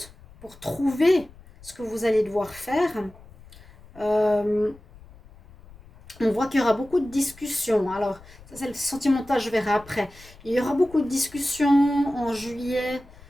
pour trouver ce que vous allez devoir faire. On voit qu'il y aura beaucoup de discussions. Alors, ça c'est le sentimental, je verrai après. Il y aura beaucoup de discussions en juillet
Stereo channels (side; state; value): left; noise; rumble, 22 dB below the sound